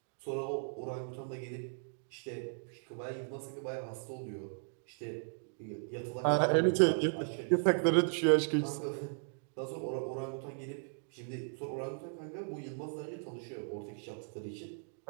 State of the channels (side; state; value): left; silent; digital silence